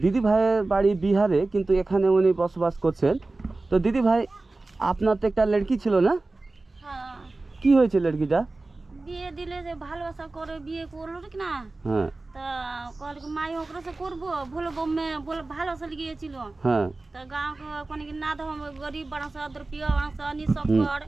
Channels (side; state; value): left; quieter; 3.2 dB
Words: দিদি ভাইয়ের বাড়ি বিহারে, কিন্তু এখানে উনি বসবাস করছেন। তো দিদি ভাই আপনার তো একটা লড়কি ছিল না, हाँ, কি হয়েছে লড়কিটা? বিয়ে দিলে যে ভালোবাসা করে বিয়ে করলো ঠিক না, হ্যাঁ তা কল মাই ওকরা से করবো বলে বম্মে বলে ভালোবাসা গিয়েছিল। হ্যাঁ तो गांव के कोने के ना दो, हम गरीब बड़ा सा रुपया बड़ा सा नि सब कर